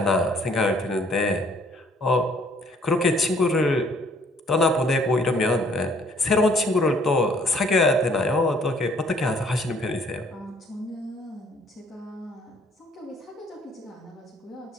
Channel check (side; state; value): both; normal; correlation 0.61